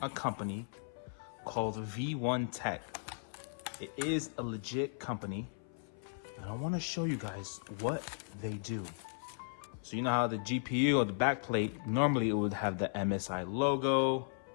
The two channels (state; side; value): silent; right; 54 dB below the other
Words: a company called V1 Tech. It is a legit company, and I want to show you guys what they do. So you know how the GPU or the backplate, normally it would have the MSI logo.